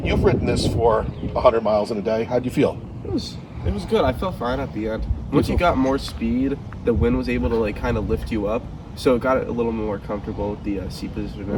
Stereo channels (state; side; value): identical; both; correlation 1.00